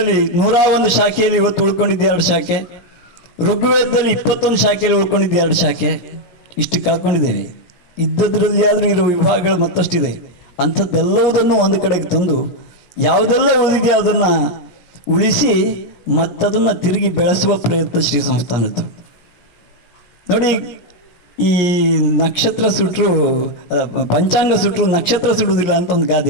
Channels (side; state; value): right; late; 17 ms